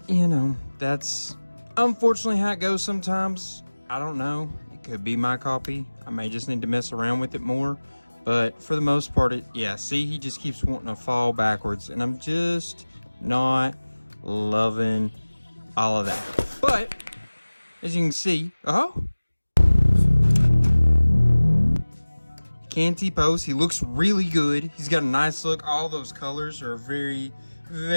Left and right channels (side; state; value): both; inverted; correlation -1.00